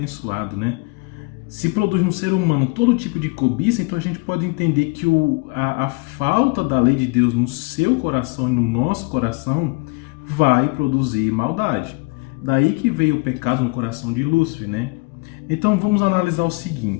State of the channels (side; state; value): right; quieter; 28.1 dB